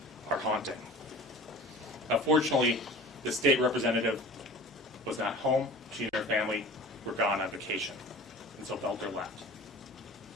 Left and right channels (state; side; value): normal; both; correlation 0.40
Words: are haunting. Unfortunately, the state representative was not home. She and her family were gone on vacation, and so Boelter left.